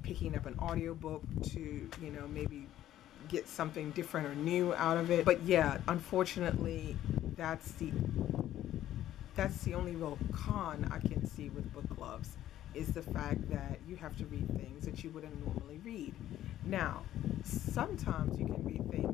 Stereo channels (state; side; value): quieter; right; 12.7 dB